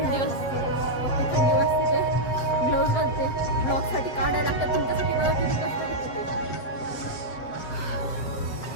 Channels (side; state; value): right; late; 7.8 ms